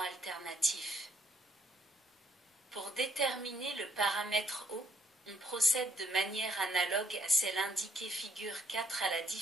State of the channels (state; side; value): normal; both; correlation 0.66